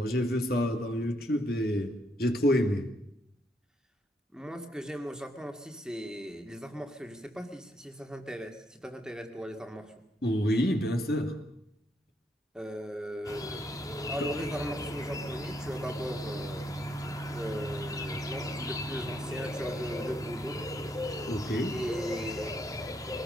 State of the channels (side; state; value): both; normal; correlation 0.75